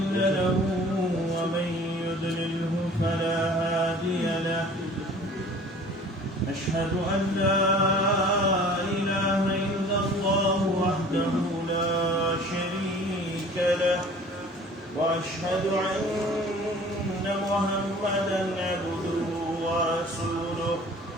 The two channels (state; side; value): normal; both; correlation 0.47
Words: له ومن يضلله فلا هادي له أشهد أن لا إله إلا الله وحده لا شريك له وأشهد أن محمدا عبده ورسوله